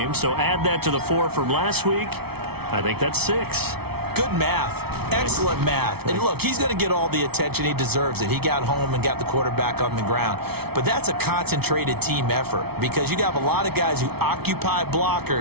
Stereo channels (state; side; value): late; left; 0.96 ms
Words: so add that to the 4 from last week. I think that's 6. Good math. Excellent math. And look, he's going to get all the attention he deserves. He got home and got the quarterback on the ground. But that's a concentrated team effort because you have a lot of guys who occupy